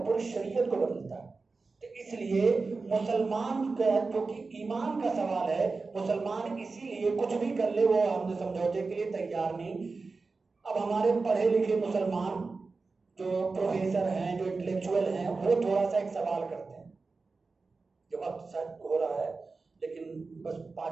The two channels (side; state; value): left; quieter; 4.0 dB